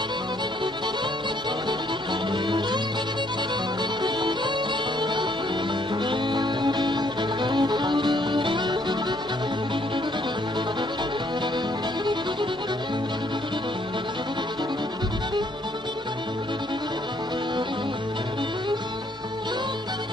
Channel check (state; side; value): normal; both; correlation 0.67